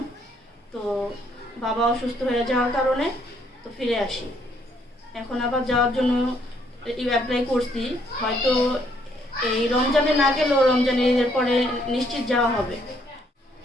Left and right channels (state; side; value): normal; both; correlation 0.69